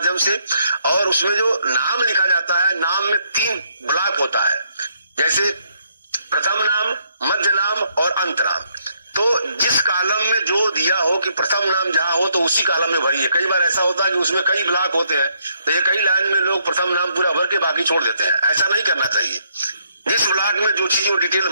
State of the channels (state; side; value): inverted; both; correlation -0.72